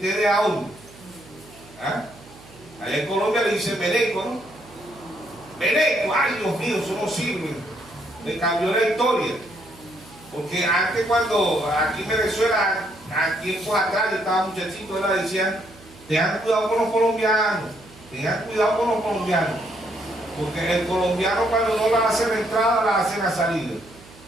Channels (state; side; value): noise; right; hum, 23 dB below the sound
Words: a uno. Allá en Colombia le dicen veneco, ¿no? Veneco, ay Dios mío, eso no sirve. Me cambió la historia. Porque antes, cuando aquí en Venezuela, a tiempos atrás, yo estaba muchachito, él decían: tengan cuidado con los colombianos, tengan cuidado con los colombianos. Porque el colombiano, cuando no la hace la entrada, la hace la salida.